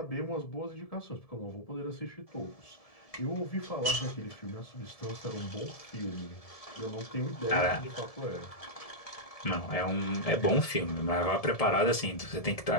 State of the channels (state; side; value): late; right; 1.7 ms